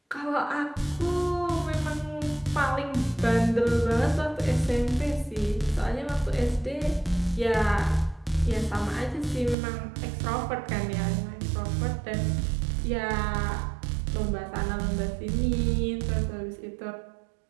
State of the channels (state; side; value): drops out; left; at 9.6 s